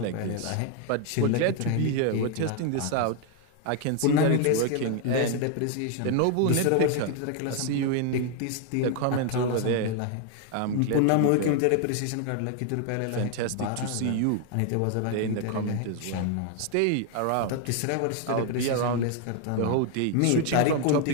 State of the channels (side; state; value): both; different; correlation 0.00